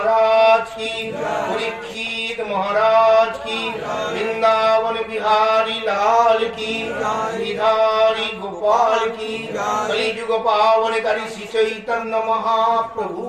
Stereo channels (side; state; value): both; identical; correlation 1.00